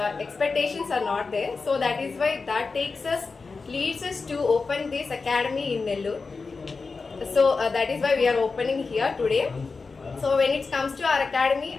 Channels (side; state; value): right; quieter; 4.4 dB